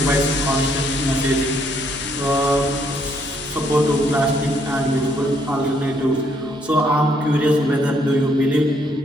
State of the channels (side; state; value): both; normal; correlation 0.70